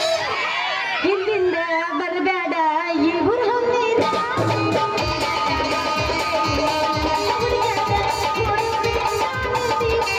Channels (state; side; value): identical; both; correlation 1.00